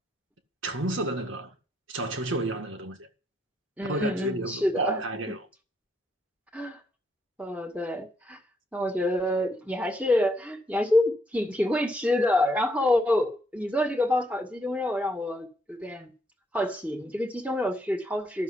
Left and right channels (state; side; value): normal; both; correlation 0.74